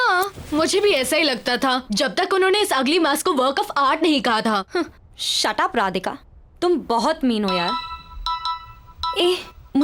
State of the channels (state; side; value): identical; both; correlation 1.00